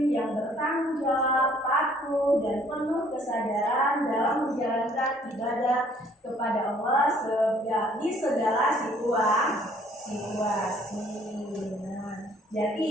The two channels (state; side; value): normal; both; correlation 0.60